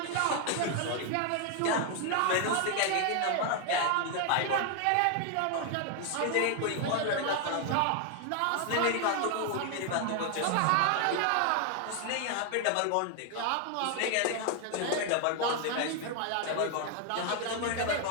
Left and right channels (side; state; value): both; different; correlation 0.00